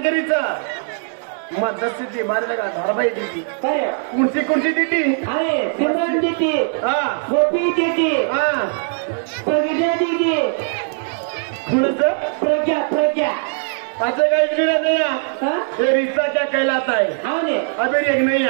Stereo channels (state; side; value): silent; left; digital silence